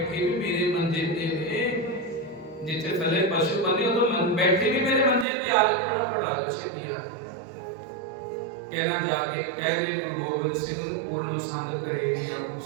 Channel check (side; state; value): left; drops out; at 5.2 s